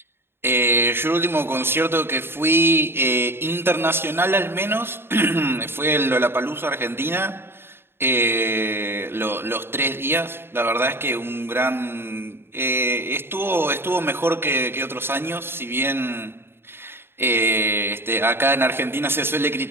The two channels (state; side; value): late; left; 0.11 ms